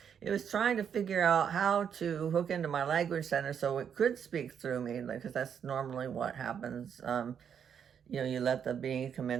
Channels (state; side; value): quieter; left; 7.9 dB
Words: It was trying to figure out how to hook into my language center so it could speak through me, because that's normally what happens. You let the being come